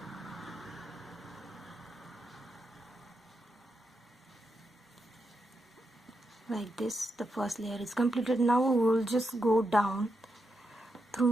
Like this, the first layer is completed. Now we will just go down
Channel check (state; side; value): normal; both; correlation 0.85